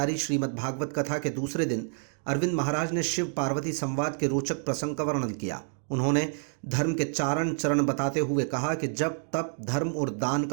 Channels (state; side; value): silent; left; 59 dB below the other